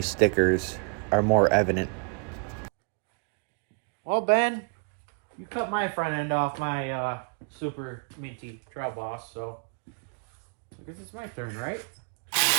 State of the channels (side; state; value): left; quieter; 39.7 dB